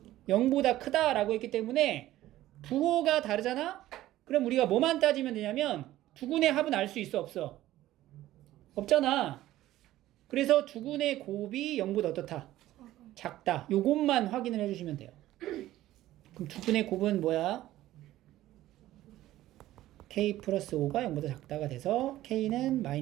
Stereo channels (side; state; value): left; quieter; 14.9 dB